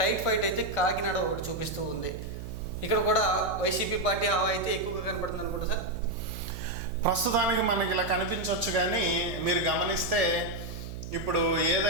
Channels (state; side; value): noise; right; hum, 9 dB below the sound